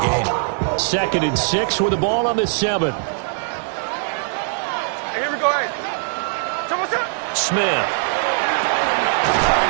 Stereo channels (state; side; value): silent; left; digital silence